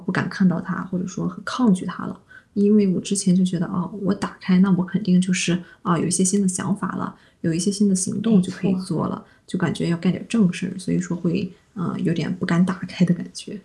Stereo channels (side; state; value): both; identical; correlation 1.00